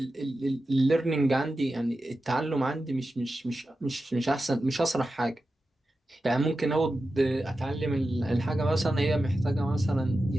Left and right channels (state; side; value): normal; both; correlation 0.92